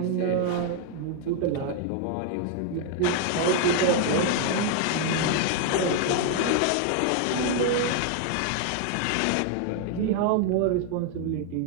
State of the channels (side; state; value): both; different; correlation 0.00